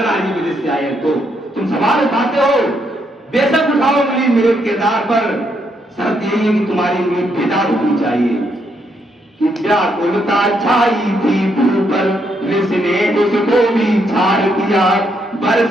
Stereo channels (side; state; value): both; normal; correlation 0.76